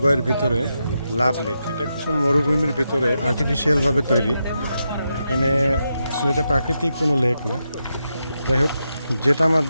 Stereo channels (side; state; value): both; inverted; correlation -0.86